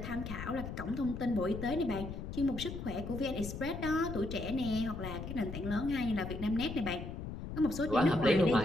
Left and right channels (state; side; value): noise; left; rumble, 7 dB below the sound